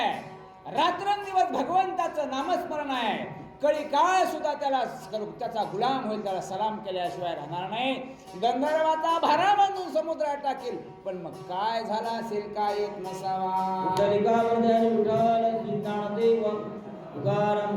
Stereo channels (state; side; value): identical; both; correlation 1.00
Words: रात्रंदिवस भगवंताचं नामस्मरण आहे. कळी काळ सुद्धा त्याचा गुलाम होईल, त्याला सलाम केल्याशिवाय राहणार नाही. गंधर्वाचा भारा बांधून समुद्रात टाकेल. पण मग काय झाला असेल? काय येत नसावा?